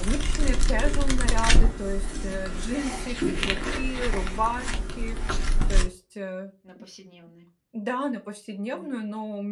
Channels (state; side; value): identical; both; correlation 1.00